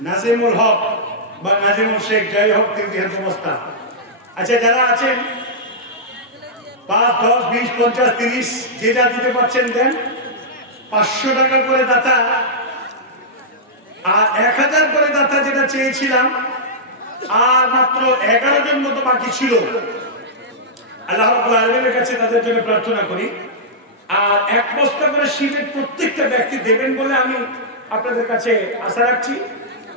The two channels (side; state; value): both; normal; correlation -0.10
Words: নাজিমুল হক বা নাজিমুল শেখ, যাই হোক 3 বস্তা। আচ্ছা যারা আছেন 5, 10, 20, 50, 30 যে যা দিতে পারছেন দেন। 500 টাকা করে দাতা আর 1000 করে দাতা যেটা চেয়েছিলাম, আর মাত্র 11 জন মতো বাকি ছিল। আল্লাহ রাব্বুল আলামিনের কাছে তাদের জন্য প্রার্থনা করি, আর 1 বস্তা করে সিমেন্ট প্রত্যেকটা ব্যক্তি দেবেন বলে আমি আপনাদের কাছে আশা রাখছি।